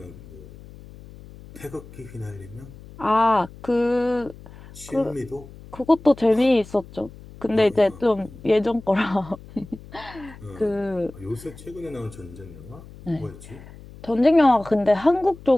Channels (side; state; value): left; noise; hum, 18 dB below the sound